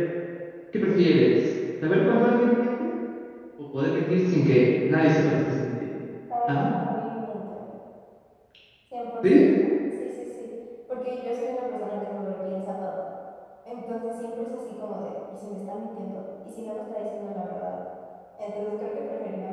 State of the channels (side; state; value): both; identical; correlation 1.00